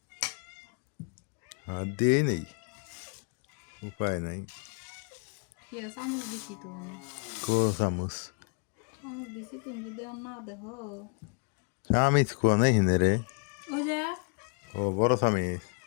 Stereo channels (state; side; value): quieter; right; 39.1 dB